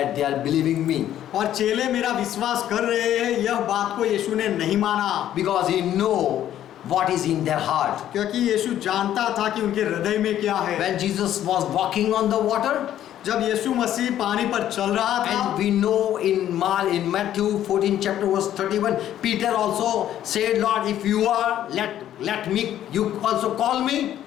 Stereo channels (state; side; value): quieter; right; 11.6 dB